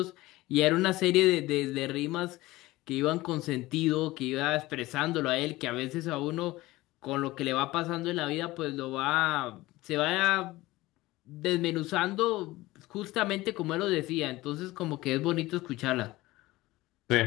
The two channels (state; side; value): quieter; right; 18.8 dB